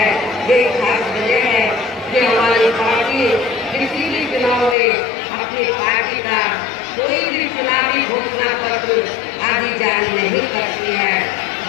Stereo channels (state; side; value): drops out; right; at 4.8 s